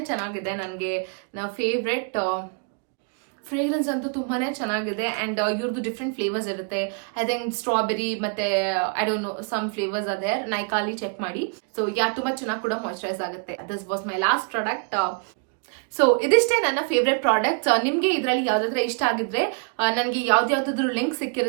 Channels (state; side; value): quieter; left; 39.0 dB